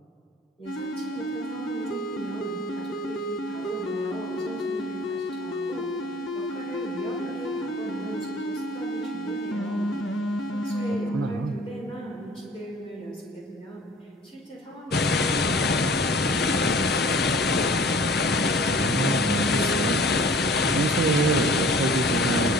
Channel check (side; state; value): both; normal; correlation 0.48